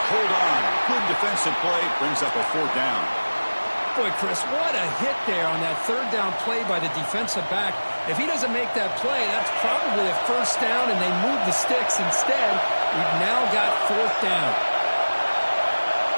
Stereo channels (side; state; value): both; inverted; correlation -1.00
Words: hold on. Good defensive play, brings up a 4th down. Boy, Chris, what a hit there on that 3rd down play by the defensive back. If he doesn't make that play, that's probably a 1st down, and they move the sticks. Instead, we've now got 4th down.